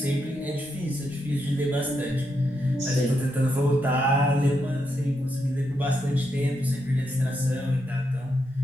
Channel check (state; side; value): normal; both; correlation 0.82